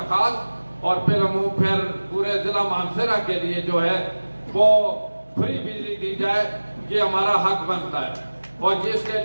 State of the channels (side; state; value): both; inverted; correlation -1.00